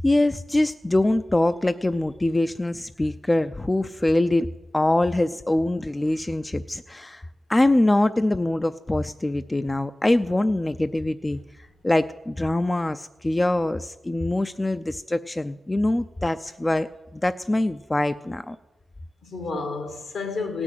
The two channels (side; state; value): both; normal; correlation 0.98